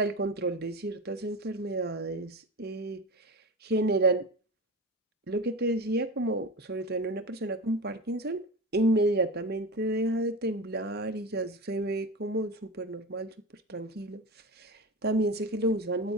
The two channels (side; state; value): both; normal; correlation 0.26